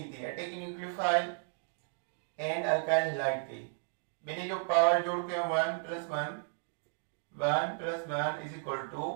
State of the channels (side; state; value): left; silent; digital silence